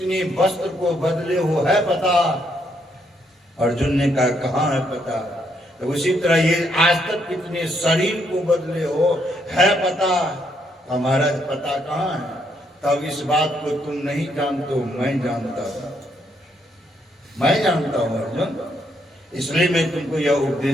वस्त्र को बदले हो है पता? अर्जुन ने कहा, कहाँ है पता? तो उसी तरह ये आज तक कितने शरीर को बदले हो है पता? हमारा पता कहाँ है? तब इस बात को तुम नहीं जानते हो, मैं जानता हूं, मैं जानता हूं अर्जुन, इसलिए मैं तुमको यह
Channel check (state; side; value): normal; both; correlation 0.74